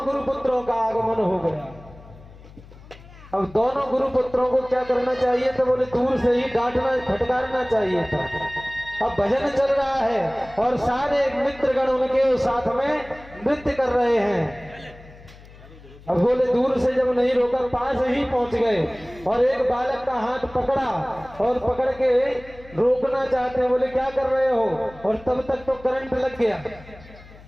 गुरुपुत्रों का आगमन हो गया। अब दोनों गुरुपुत्रों को क्या करना चाहिए तो बोले दूर से ही डांटना फटकारना चाहिए था। अब भजन चल रहा है और सारे मित्रगण उनके साथ में नृत्य कर रहे हैं। अब बोले दूर से जब नहीं रोका पास ही पहुंच गए और एक बालक का हाथ पकड़ा और पकड़ के रोकना चाहते हैं। बोले क्या कर रहे हो? और तब तक तो करंट लग गया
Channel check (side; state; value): left; noise; hum, 21 dB below the sound